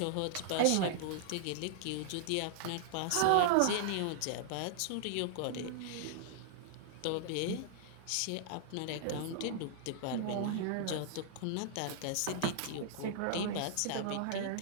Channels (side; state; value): both; different; correlation -0.01